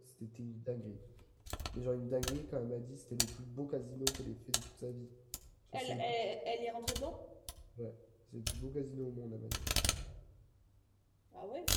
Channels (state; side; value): identical; both; correlation 1.00